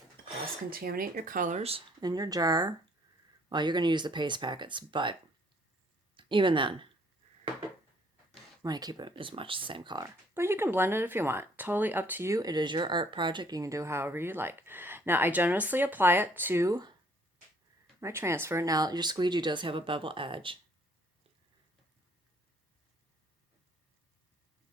cross-contaminate your colors in your jar. Well, you're going to use the paste packets, but even then, you want to keep it as much the same color. But you can blend it if you want. Totally up to you. It is your art project. You can do however you like. Now, I generously apply it to my transfer. Now, your squeegee does have a bevel edge.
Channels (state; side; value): normal; both; correlation 0.62